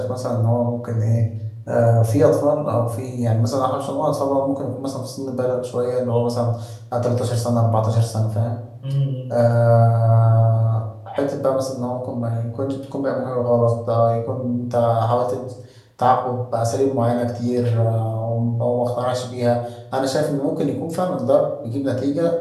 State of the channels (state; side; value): identical; both; correlation 1.00